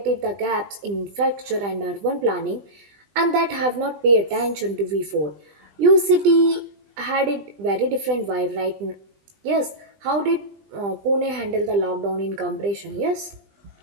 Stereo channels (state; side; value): late; left; 20 ms